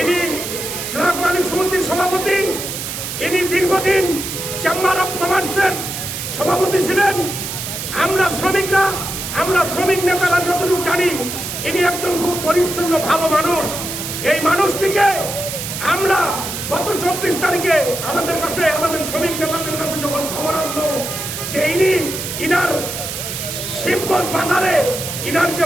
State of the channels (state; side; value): noise; right; hiss, 6 dB below the sound